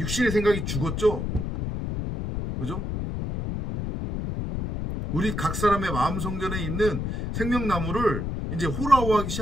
생각이 죽었죠. 그죠? 우리 각 사람의 마음 성전에 있는 생명나무를 이제 호라호하기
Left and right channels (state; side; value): noise; left; rumble, 3 dB below the sound